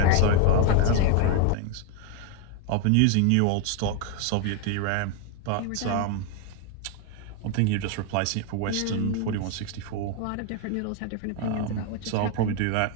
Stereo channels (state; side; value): different; both; correlation 0.01